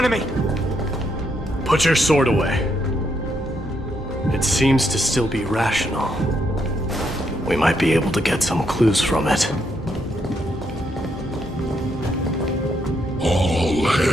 enemy! Put your sword away. It seems to still be rational. We might be able to get some clues from it. All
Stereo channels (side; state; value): both; normal; correlation 0.77